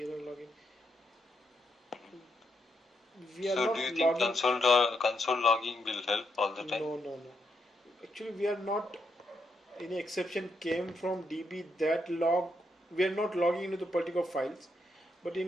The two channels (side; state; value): both; normal; correlation 0.80